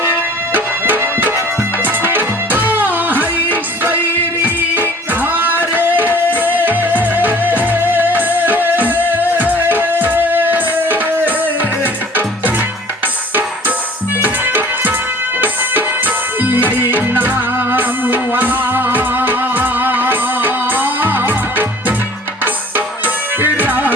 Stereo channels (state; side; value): normal; both; correlation 0.51